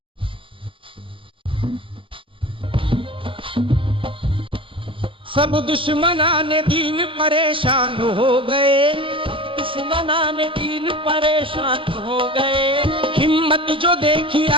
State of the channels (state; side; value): late; left; 0.25 ms